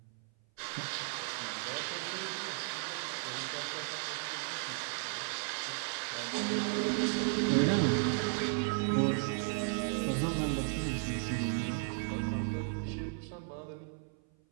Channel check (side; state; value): left; silent; 54 dB below the other